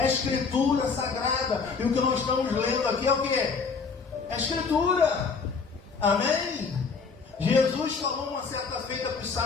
a Escritura Sagrada, e o que nós estamos lendo aqui é o que? É a Escritura. Amém? Jesus falou uma certa feita para os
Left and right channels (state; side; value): quieter; right; 5.1 dB